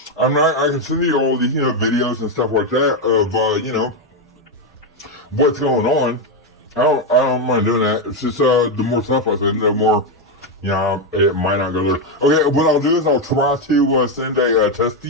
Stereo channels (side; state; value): both; normal; correlation 0.06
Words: I can send you all these, you know, videos and stuff like that of, you know, what's going on. I don't mind doing that. It's just, the more stuff I send, the more, you know, it might not go there. Okay, what I'll do is I'll try to, send a test